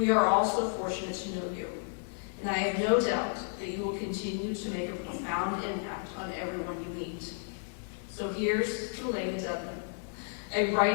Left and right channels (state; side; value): silent; right; digital silence